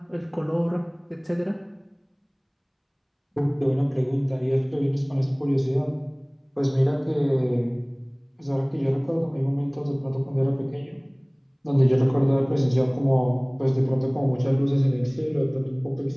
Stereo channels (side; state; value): both; identical; correlation 1.00